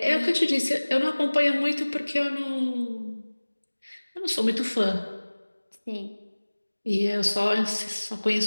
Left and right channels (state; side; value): inverted; both; correlation -1.00